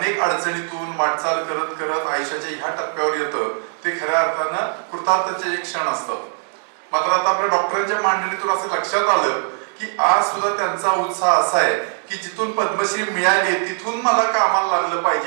अडचणीतून वाटचाल करत करत आयुष्याच्या ह्या टप्प्यावर येतं ते खऱ्या अर्थानं कृतार्थाचे एक क्षण असतात. मात्र आता आपल्या डॉक्टरांच्या मांडणीतून असं लक्षात आलं की आज सुद्धा त्यांचा उत्साह असा आहे की जिथून पद्मश्री मिळाली तिथून मला कामाला लागलं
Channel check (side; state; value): left; silent; 57 dB below the other